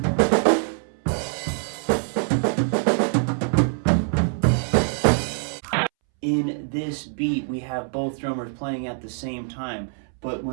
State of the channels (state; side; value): silent; left; 63 dB below the other